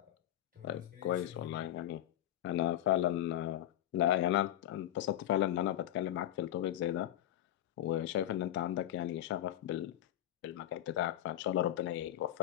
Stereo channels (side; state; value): right; quieter; 12.6 dB